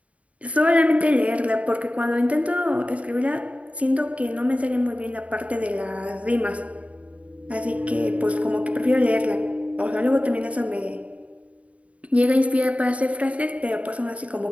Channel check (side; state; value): left; late; 0.066 ms